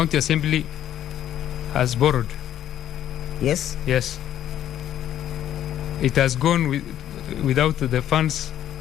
assembly has borrowed. Yes? Yes. It has gone without the funds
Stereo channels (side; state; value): right; quieter; 11.3 dB